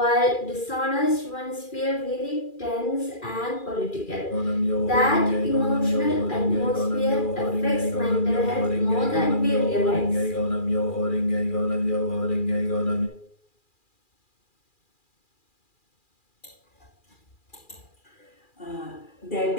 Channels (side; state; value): right; late; 2.4 ms